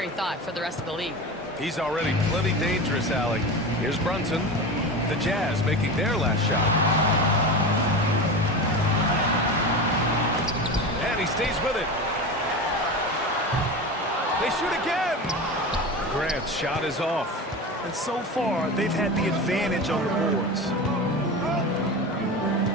thought for the rest of the league. He's already plenty dangerous, Allie. Here's Brunson. The Jazz making their last shot. And he stays with it. They shoot again. Grant's shot is off. And so far, they've had the advantage on the boards.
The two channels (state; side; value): normal; both; correlation 0.27